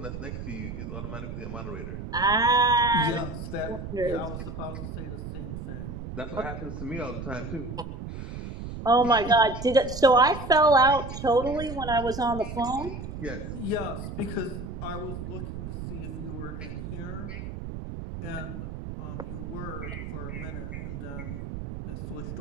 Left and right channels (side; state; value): right; noise; rumble, 7 dB below the sound